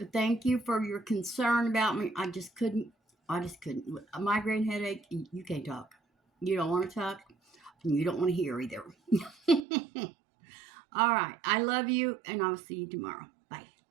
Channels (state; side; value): drops out; left; at 9.7 s